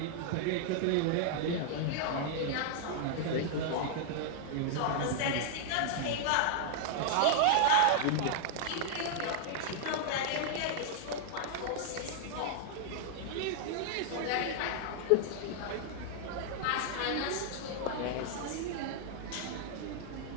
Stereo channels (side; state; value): both; different; correlation 0.00